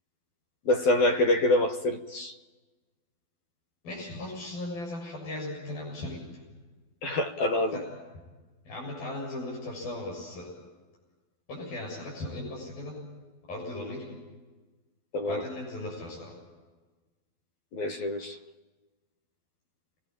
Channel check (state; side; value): late; right; 12 ms